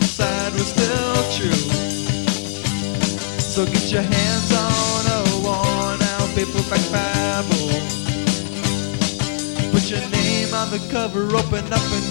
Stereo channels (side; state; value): right; silent; 66 dB below the other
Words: were still true. So get your hands on a worn-out paperback Bible. Put your name on the cover, open up and